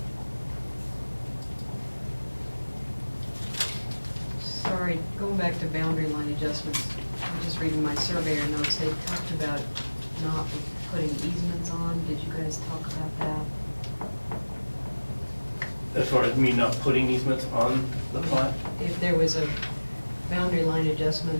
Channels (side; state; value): both; inverted; correlation -1.00